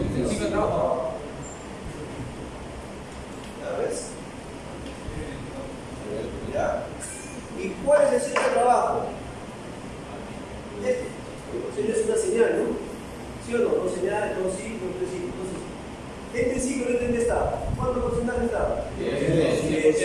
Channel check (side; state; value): both; identical; correlation 1.00